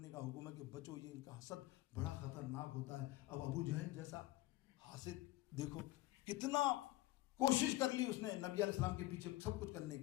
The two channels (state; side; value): quieter; right; 17.7 dB